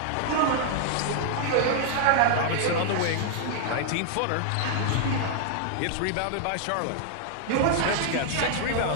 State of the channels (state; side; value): different; both; correlation 0.00